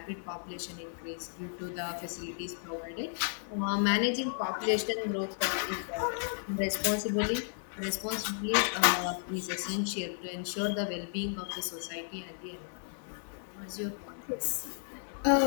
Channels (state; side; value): silent; right; digital silence